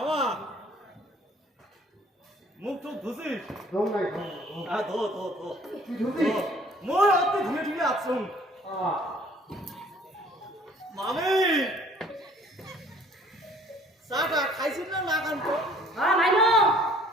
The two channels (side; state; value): both; normal; correlation 0.56